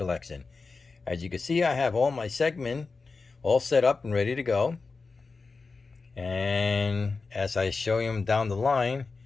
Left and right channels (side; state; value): right; quieter; 4.2 dB